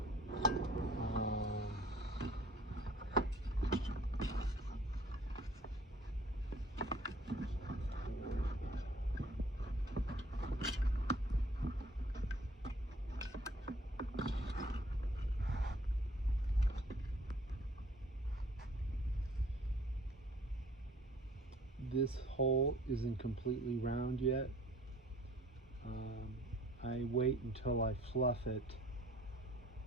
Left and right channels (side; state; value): both; normal; correlation 0.56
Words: This hole isn't completely round yet. I wait until I fluff it